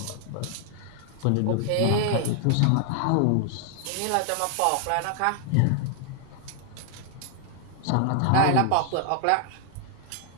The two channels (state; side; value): different; both; correlation 0.00